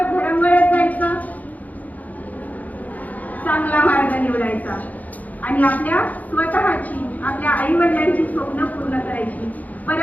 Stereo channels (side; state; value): right; late; 0.078 ms